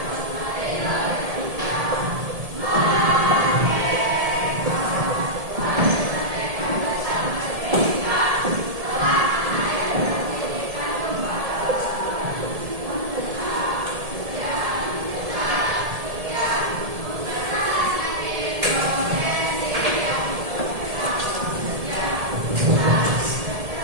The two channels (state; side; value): late; left; 1.7 ms